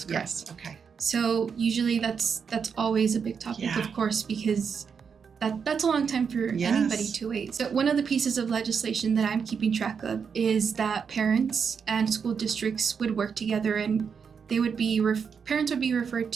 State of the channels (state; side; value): quieter; left; 6.4 dB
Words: correct. Yes. Okay. So usually that's always a big topic, Yeah. of course, because that's a long time for Yes. anybody to wait. So one of the pieces of legislation that I'm keeping track of is that parents and school districts would work together, and they would be parents would be referred